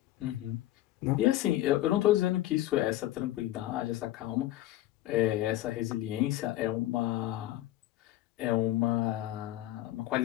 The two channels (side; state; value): right; quieter; 15.1 dB